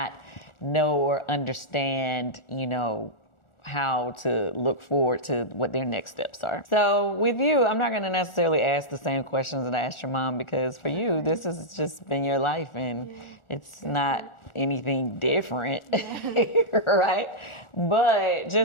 know or understand, how to look forward to what their next steps are. So with you, I'm not going to necessarily ask the same questions that I asked your mom, because for you, this has just been your life and it's not anything different, right? But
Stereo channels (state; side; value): late; right; 1.4 ms